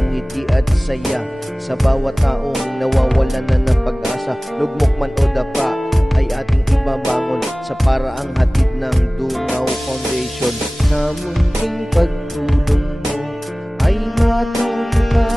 ngiti at saya sa bawat taong nawawalan na ng pag-asa. Lugmok man o dapa ay ating ibabangon sa paraang hatid ng Dungaw Foundation. Sa munting pagtulong mo ay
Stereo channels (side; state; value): both; normal; correlation 0.98